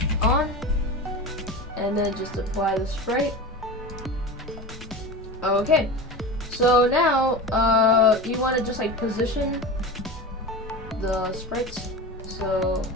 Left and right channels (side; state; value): both; normal; correlation 0.28